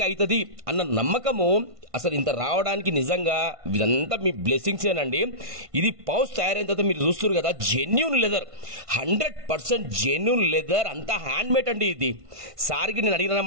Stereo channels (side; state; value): left; late; 1.5 ms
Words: అవుతుంది అన్న నమ్మకము అసలు ఇంత రావడానికి నిజంగా ఇదంతా మీ బ్లెస్సింగ్స్ ఏనండి. ఇది పౌచ్ తయారైన తర్వాత మీరు చూస్తారు కదా జెన్యూన్ లెదర్, 100% జెన్యూన్ లెదర్, అంతా హ్యాండ్ మేడ్ అండి. ఇది సార్కి నేను అడిగిన